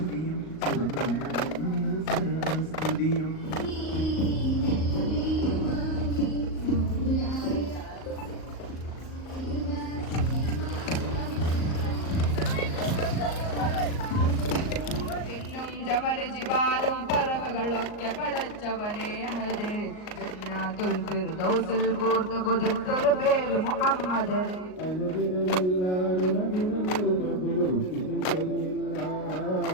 സുബ്രഹ്മണ്യനിൽ സർവസ്തുതിയും ജമല ജിബാലും പറവകളൊക്കെ പടച്ചവനെ ഹരേ ജന്നാത്തുൽ ഫിർദൗസിൽ കൂർത്ത കൊതിർത്തൊരു പേര് മുഹമ്മദ്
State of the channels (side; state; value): right; late; 38 ms